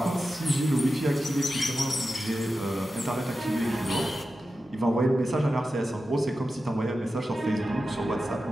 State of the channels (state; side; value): normal; both; correlation 0.92